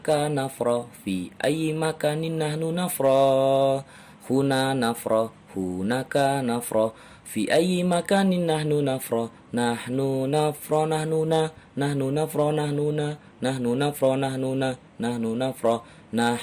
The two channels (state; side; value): identical; both; correlation 1.00